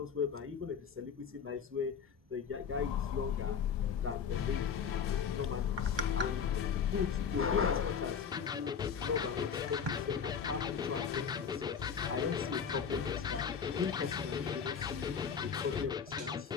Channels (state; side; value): quieter; right; 6.9 dB